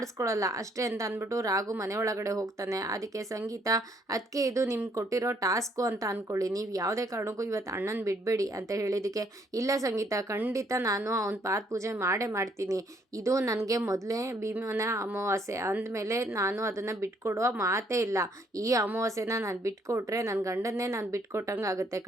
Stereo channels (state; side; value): normal; both; correlation 0.68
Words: ಅಷ್ಟೇ ಅಂತ ಅಂದ್ಬಿಟ್ಟು ರಾಘು ಮನೆ ಒಳಗಡೆ ಹೋಗ್ತಾನೆ. ಅದಕ್ಕೆ ಸಂಗೀತ ಅದಕ್ಕೆ ಇದು ನಿಮ್ಗೆ ಕೊಟ್ಟಿರೋ ಟಾಸ್ಕು ಅಂತ ಅಂದ್ಕೊಳ್ಳಿ, ನೀವು ಯಾವುದೇ ಕಾರಣಕ್ಕೂ ಇವತ್ತು ಅಣ್ಣನ ಬಿಡಬೇಡಿ ಅಂತ ಹೇಳಿದ್ದಕ್ಕೆ ಇಲ್ಲ ಸಂಗೀತ ಖಂಡಿತ ನಾನು ಅವ್ನ ಪಾದ ಪೂಜೆ ಮಾಡೇ ಮಾಡ್ತೀನಿ, ಇದು ನನಗೆ ಮೊದಲೇ ಭೀಮನ ಅಮಾವಾಸ್ಯೆ ಅಂದಮೇಲೆ ನಾನು ಅದನ್ನು ಬಿಟ್ಕೊಡುವ ಮಾತೇ ಇಲ್ಲ, ಈ ಅಮಾವಾಸ್ಯೆನ ನಾನು ಬಿಟ್ಕೊಟ್ರೆ ನನ್ನ ಗಂಡನ್ನೇ ನಾನು ಬಿಟ್ಕೊಟ್ಟಂಗೆ ಆಗುತ್ತೆ,